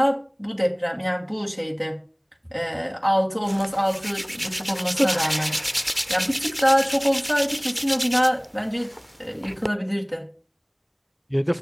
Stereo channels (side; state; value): both; identical; correlation 1.00